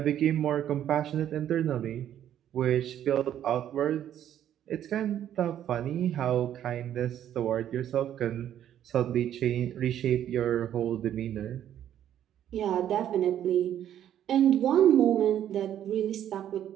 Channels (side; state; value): left; quieter; 10.8 dB